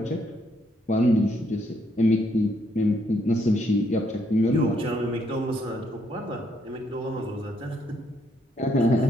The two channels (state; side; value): normal; both; correlation 0.73